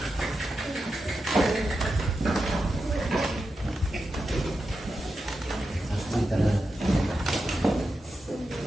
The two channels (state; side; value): normal; both; correlation 0.89